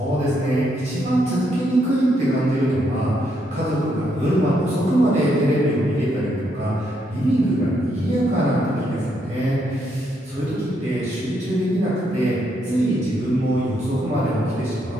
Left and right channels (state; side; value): normal; both; correlation 0.76